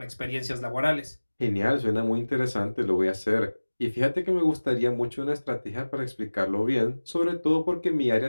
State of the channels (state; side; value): inverted; both; correlation -1.00